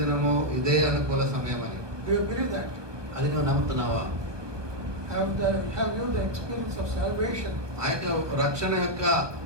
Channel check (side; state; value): left; late; 1.2 ms